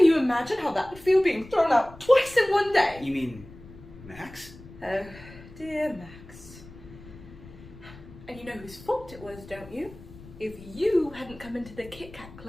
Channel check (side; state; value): left; noise; rumble, 18 dB below the sound